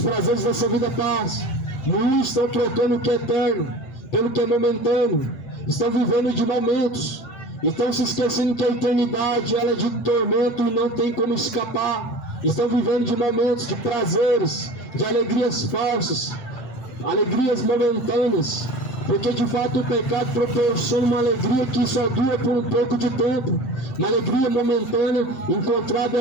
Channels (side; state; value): right; late; 7.8 ms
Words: dessa vida passam. Muitos estão trocando o que é eterno pelo que é momentâneo, estão vivendo de momentos, estão se esquecendo que a eternidade ela é de tormento e não tem como escapar. Estão vivendo de momentos, de prazeres, de alegrias falsas, alegrias momentâneas, porque de fato o pecado proporciona uma alegria que só dura por um pouco de tempo, uma alegria momentânea encontrada